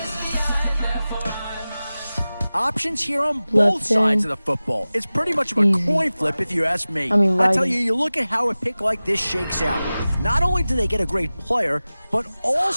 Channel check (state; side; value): inverted; both; correlation -0.97